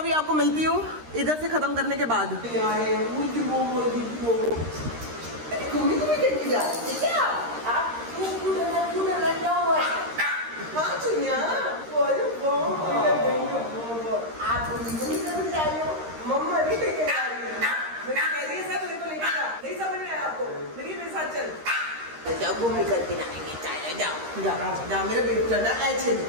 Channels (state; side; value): late; left; 13 ms